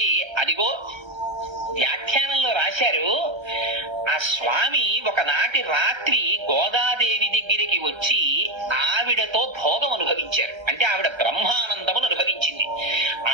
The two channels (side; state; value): left; late; 1.3 ms